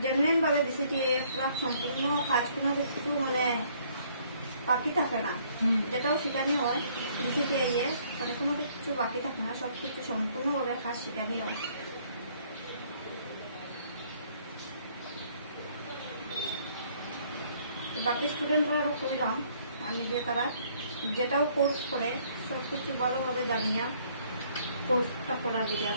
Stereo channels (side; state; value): both; inverted; correlation -0.63